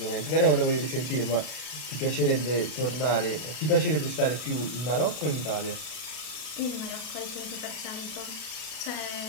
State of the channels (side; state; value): right; late; 32 ms